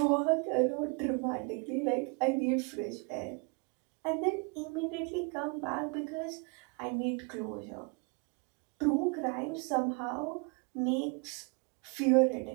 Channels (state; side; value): quieter; left; 33.2 dB